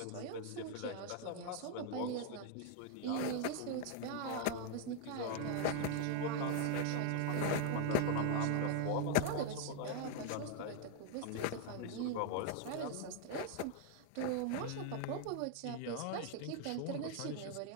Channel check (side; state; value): both; different; correlation 0.00